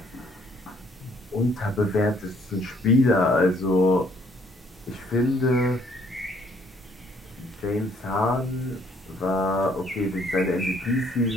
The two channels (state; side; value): normal; both; correlation 0.64